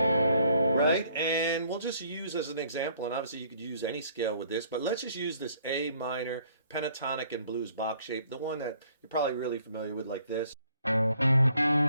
right? And we'll just use as an example, and obviously you could use any scale with this, but let's just use this A minor pentatonic and blues box shape, the one that you're probably really familiar with, like this.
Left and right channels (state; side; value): inverted; both; correlation -0.63